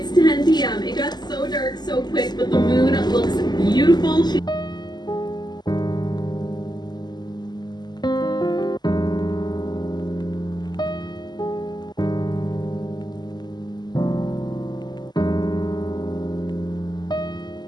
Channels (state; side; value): late; right; 0.21 ms